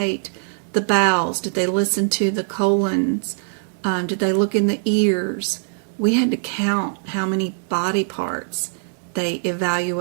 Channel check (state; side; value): silent; left; digital silence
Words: the bowels? Did they listen to the colons? Did they look in the ears? We had to count how many body parts they